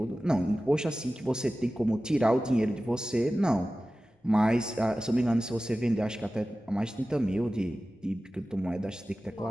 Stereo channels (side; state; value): both; normal; correlation 0.96